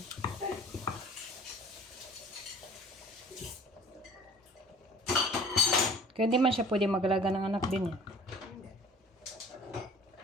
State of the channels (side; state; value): both; normal; correlation 0.46